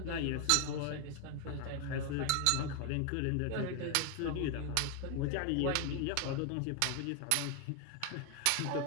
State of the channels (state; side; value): different; both; correlation 0.01